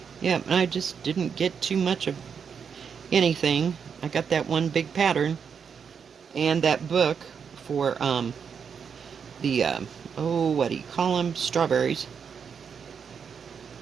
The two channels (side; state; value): left; quieter; 6.7 dB